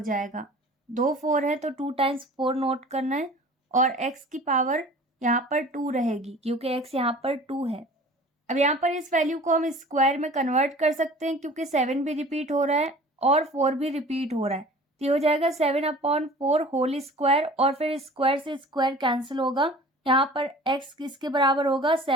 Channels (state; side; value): normal; both; correlation 0.44